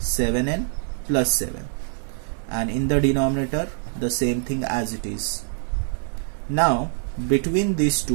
plus 7. And in the denominator the same thing as it is. Now between these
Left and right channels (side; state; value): left; silent; 62 dB below the other